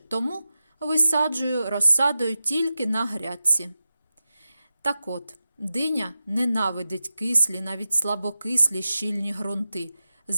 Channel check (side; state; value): both; inverted; correlation -0.93